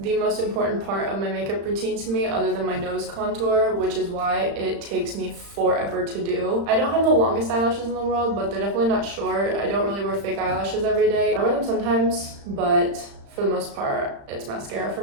most important part of my makeup routine to me, other than my nose contour, which is why it takes me forever to do. I don't have the longest eyelashes in the world, but they're definitely not short. I don't really wear fake eyelashes every day. I wear them sometimes, but for the most part, it's mascara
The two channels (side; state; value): left; late; 35 ms